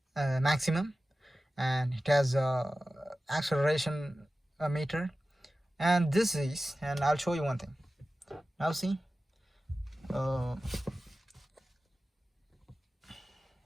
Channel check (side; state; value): both; normal; correlation 0.95